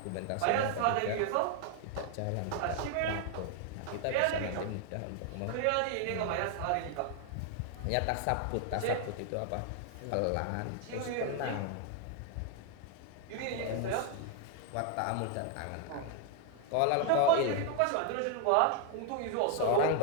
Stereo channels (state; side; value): different; both; correlation 0.00